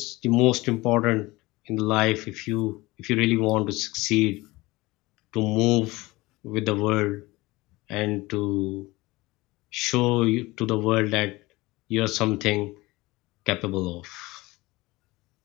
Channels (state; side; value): quieter; right; 21.0 dB